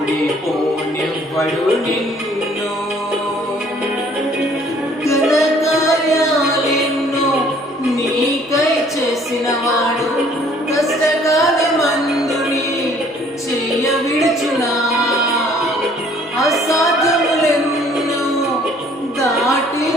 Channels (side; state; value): both; normal; correlation 0.58